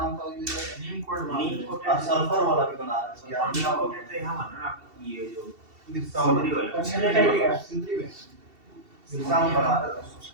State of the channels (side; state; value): left; late; 2.7 ms